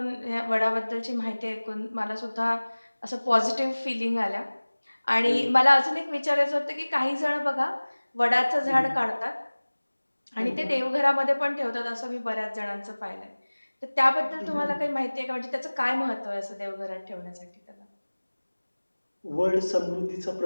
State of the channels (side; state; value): both; inverted; correlation -1.00